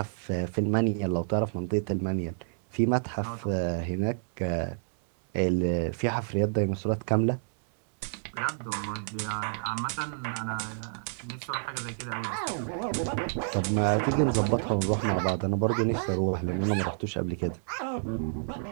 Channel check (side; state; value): left; silent; digital silence